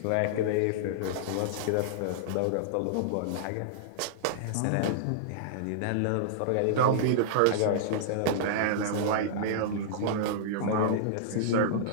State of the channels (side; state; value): both; different; correlation -0.02